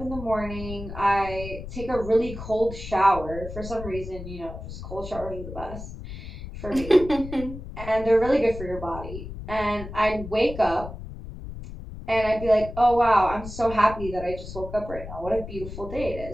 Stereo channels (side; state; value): left; noise; rumble, 11 dB below the sound